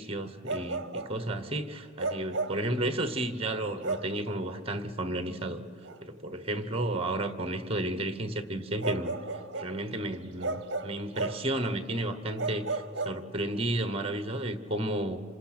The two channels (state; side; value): normal; both; correlation 0.28